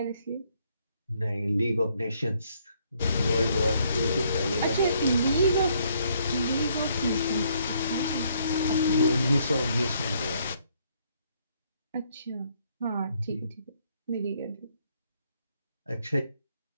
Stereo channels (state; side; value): inverted; both; correlation -0.69